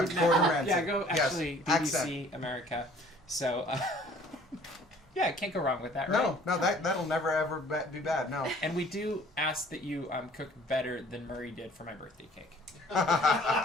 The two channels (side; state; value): both; normal; correlation 0.54